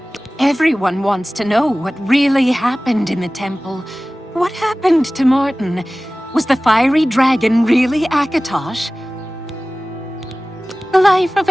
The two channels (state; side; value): normal; both; correlation 0.98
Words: Everyone wants to know what really happened in the temple. What happened to Martin? Was the fiery dragon really Akatosh? The life of